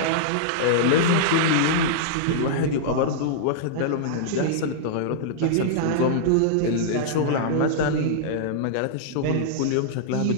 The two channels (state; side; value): different; both; correlation -0.02